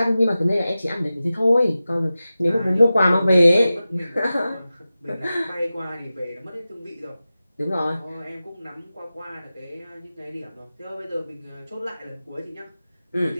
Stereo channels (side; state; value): both; inverted; correlation -0.95